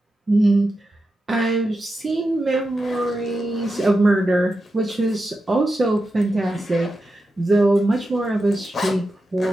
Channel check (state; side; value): normal; both; correlation 0.89